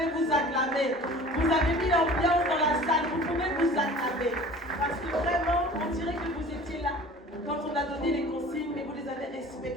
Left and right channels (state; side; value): normal; both; correlation 0.44